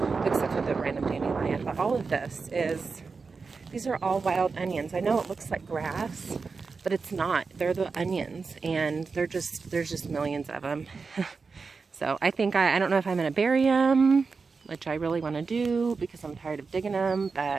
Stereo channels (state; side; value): quieter; left; 4.7 dB